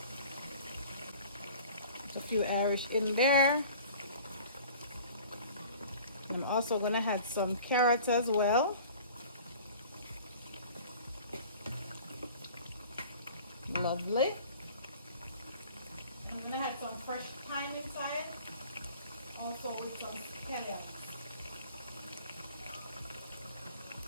A few Irish in there. I'm also gonna add some carrots as well. Lovely. I'm gonna add some fresh thyme inside, also with some scallions.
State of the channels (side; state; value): both; inverted; correlation -0.46